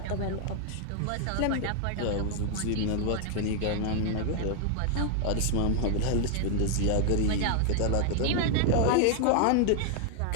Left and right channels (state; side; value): different; both; correlation 0.00